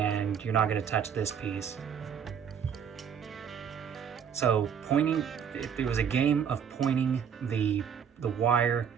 you're not gonna touch this piece. So it was a game of pointing the wire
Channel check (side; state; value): left; quieter; 7.7 dB